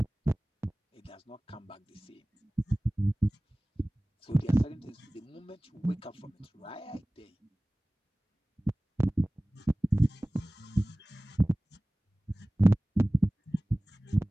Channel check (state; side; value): normal; both; correlation 0.98